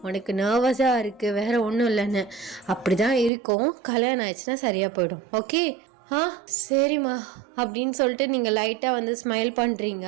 உனக்கு நர்வஸாக இருக்குது, வேற ஒன்றும் இல்லைன்னு. அப்படி தான் இருக்கும். கல்யாணம் ஆயிடுச்சுன்னா சரியாக போயிடும். ஓகே? சரிம்மா அப்படின்னு சொல்லிட்டு நீங்கள் லைட்டாக ஸ்மைல் பண்ணுறீங்க.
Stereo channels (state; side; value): drops out; left; at 3.3 s